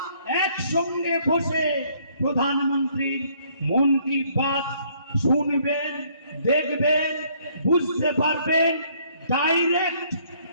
একসঙ্গে বসে প্রধানমন্ত্রীর মন কি বাত শুনবেন, দেখবেন, বুঝতে পারবেন। ডাইরেক্ট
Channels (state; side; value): inverted; both; correlation -0.64